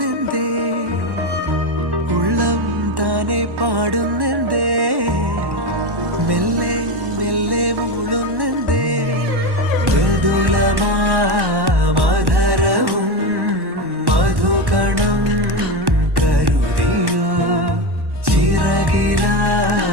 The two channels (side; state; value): left; late; 1.1 ms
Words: ഉള്ളം താനെ പാടുന്നെന്തേ മെല്ലെ മെല്ലെ മൂളുന്നെന്തേ മൃദുലമാധരവും മധുകണം കരുതിയോ